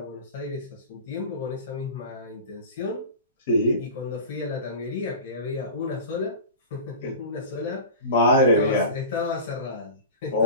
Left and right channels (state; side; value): inverted; both; correlation -0.33